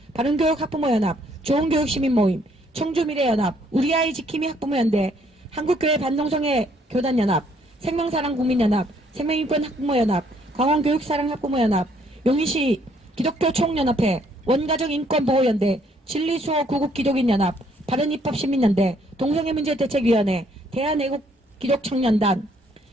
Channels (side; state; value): both; normal; correlation 0.66